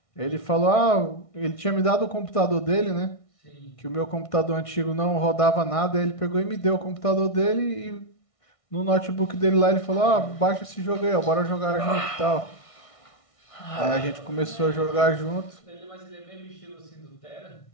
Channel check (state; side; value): late; right; 1.6 ms